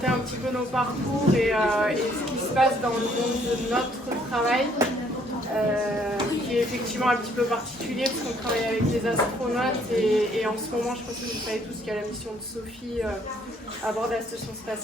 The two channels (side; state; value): both; normal; correlation 0.65